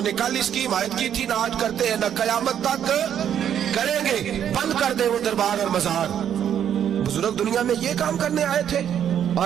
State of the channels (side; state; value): left; quieter; 9.4 dB